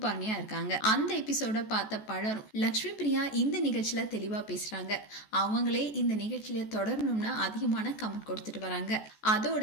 இருக்காங்க. அந்த எபிசோட பார்த்த பலரும் லக்ஷ்மி பிரியா இந்த நிகழ்ச்சியில தெளிவா பேசுறாங்க, அவங்களே இந்த நிகழ்ச்சியில தொடரணும்னு அதிகமான கமெண்ட் கொடுத்துட்டு வராங்க. அதோட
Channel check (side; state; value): right; late; 14 ms